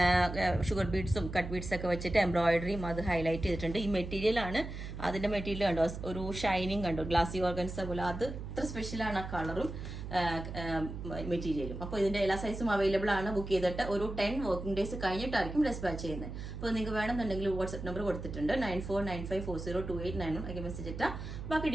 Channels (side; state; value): right; noise; hum, 8 dB below the sound